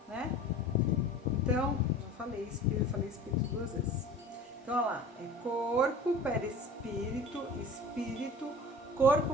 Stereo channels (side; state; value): both; normal; correlation 0.41